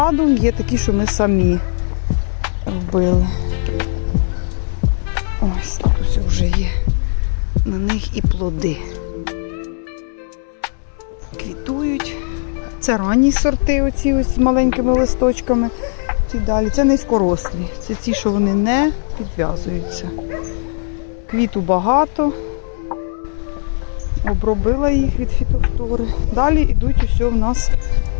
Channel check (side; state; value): right; silent; digital silence